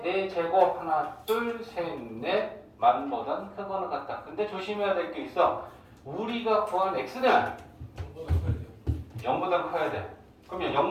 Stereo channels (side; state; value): both; identical; correlation 1.00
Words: 4제곱 하나 둘 셋 넷 만보단 크거나 같다. 근데 조심해야 될 게 있어. 우리가 구한 x는 0보다 커야 돼. 그러면